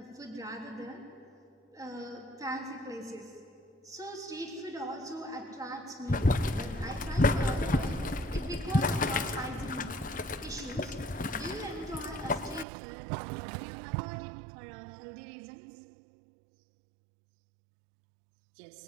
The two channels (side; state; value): left; drops out; at 12.7 s